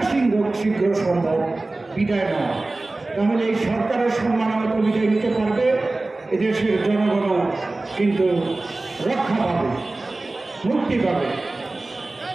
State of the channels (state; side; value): quieter; left; 3.1 dB